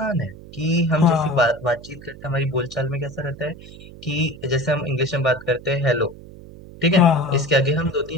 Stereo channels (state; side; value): noise; right; hum, 17 dB below the sound